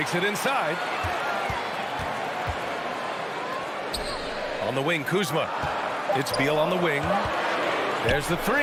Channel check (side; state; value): both; identical; correlation 1.00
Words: it inside. On the wing, Kuzma. It's Beal on the wing. There's the